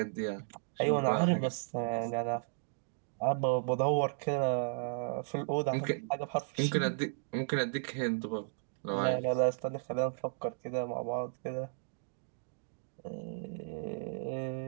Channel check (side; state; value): left; silent; digital silence